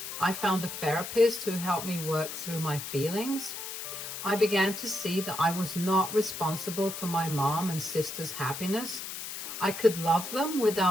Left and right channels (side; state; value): left; noise; hiss, 7 dB below the sound